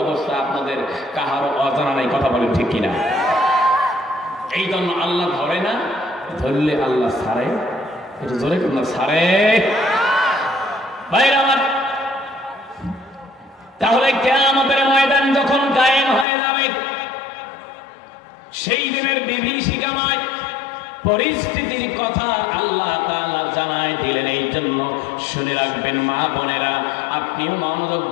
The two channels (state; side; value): drops out; right; at 16.2 s